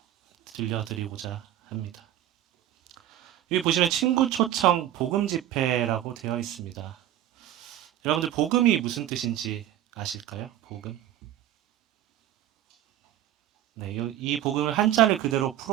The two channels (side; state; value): left; quieter; 12.5 dB